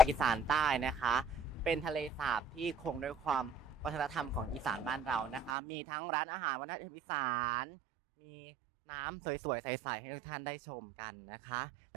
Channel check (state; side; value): drops out; left; at 5.6 s